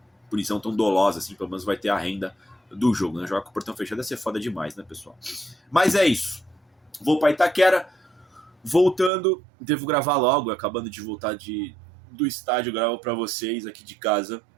punição tão dolosa, assim, pelo menos vai ter a renda do jogo, né? Jogar com o portão fechado ia ser foda demais, né, pessoal? Mas é isso. Vou para Itaquera. Voltando, devo gravar logo, acabando de voltar do estádio, gravo para vocês aqui de casa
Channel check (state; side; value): drops out; left; at 9.1 s